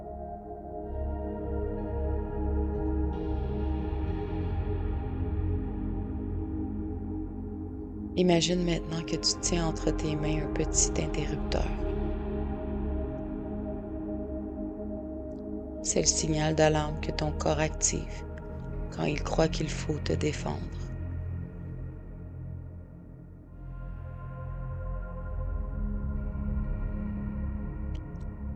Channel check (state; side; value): identical; both; correlation 1.00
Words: Imagine maintenant que tu tiens entre tes mains un petit interrupteur. C'est le signal d'alarme que ton corps active quand il croit qu'il faut te défendre.